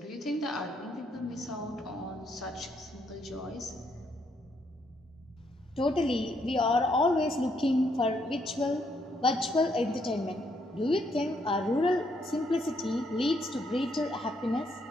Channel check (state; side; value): normal; both; correlation 0.73